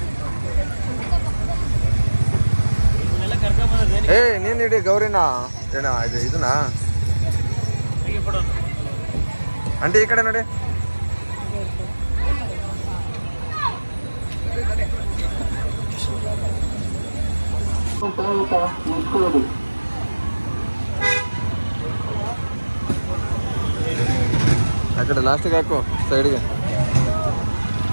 ನೀನ್ ಇಡಿ ಗೌರಿನ ಏನ ಇದನ್ನ ಅಂಟಿ ಈ ಕಡೆ ನೋಡಿ. ಆ ಕಡೆ ಲಾಸ್ಟಿಗೆ ಹಾಕು ಸೈಡ್ಗೆ,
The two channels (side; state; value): both; inverted; correlation -1.00